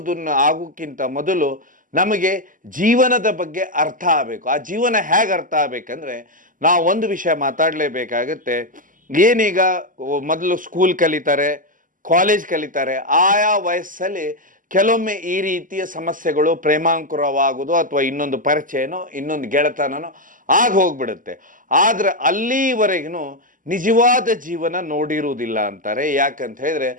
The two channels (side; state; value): left; late; 0.39 ms